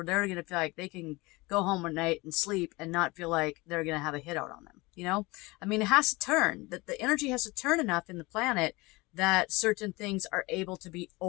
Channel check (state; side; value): quieter; right; 23.2 dB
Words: they're going to feel like they can go home at night and sleep and not feel like they're going to have a hit out on them. It has to turn, that the energy has to turn enough in the planet that certain things are able to be